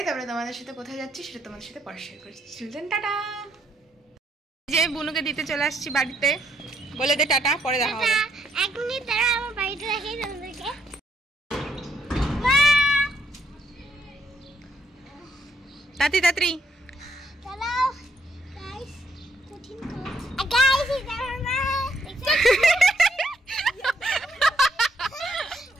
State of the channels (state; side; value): normal; both; correlation 0.73